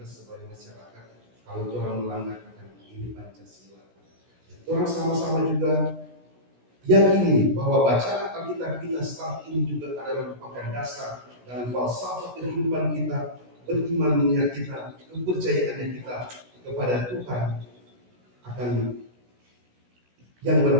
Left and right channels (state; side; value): late; left; 16 ms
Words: sebagai masyarakat. Kalau orang melanggar ini Pancasila, orang sama-sama juga yakini bahwa bacaan Alkitab kita saat ini juga adalah merupakan dasar dan falsafah kehidupan kita, berimannya kita, kepercayaannya kita kepada Tuhan, akan yang